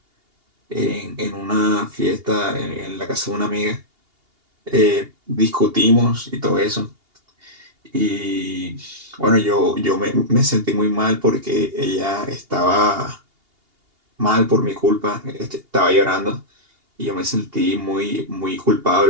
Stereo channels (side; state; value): left; late; 2.8 ms